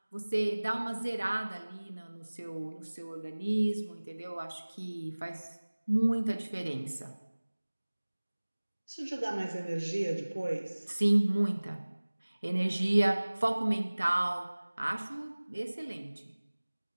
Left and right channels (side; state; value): both; inverted; correlation -1.00